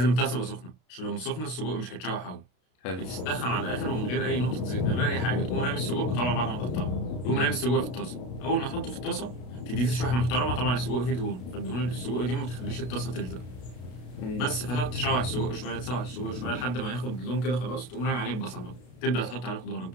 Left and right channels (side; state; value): right; late; 32 ms